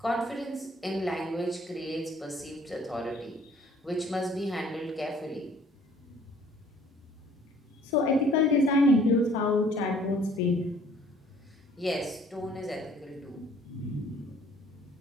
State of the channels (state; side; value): normal; both; correlation 0.57